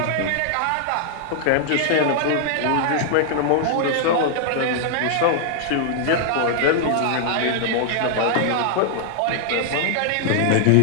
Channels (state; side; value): different; both; correlation 0.00